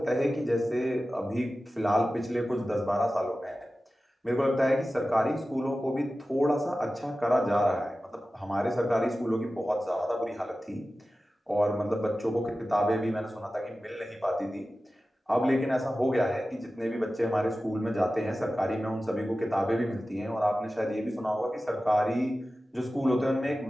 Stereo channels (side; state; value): both; normal; correlation 0.95